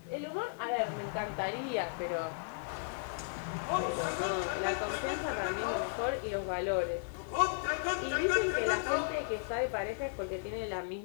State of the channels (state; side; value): silent; right; 54 dB below the other